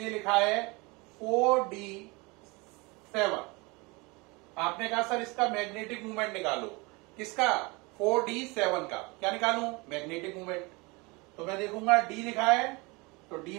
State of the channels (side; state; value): left; quieter; 26.3 dB